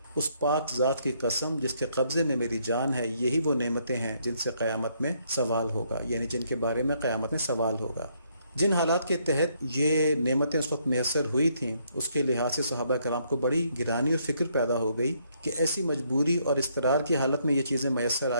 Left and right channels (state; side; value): inverted; both; correlation -0.71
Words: اس پاک ذات کی قسم جس کے قبضے میں میری جان ہے، یہی وہ نعمتیں ہیں جن سے قیامت میں سوال ہوگا، یعنی جن کے بارے میں قیامت میں سوال ہوگا۔ جن حالات کے تحت یہ نعمتیں اس وقت میسر ہوئی تھیں اس کے لحاظ سے صحابہ کرام کو بڑی گرانی اور فکر پیدا ہو گئی کہ ایسی مجبوری اور اضطرار کی حالت میں یہ چیزیں میسر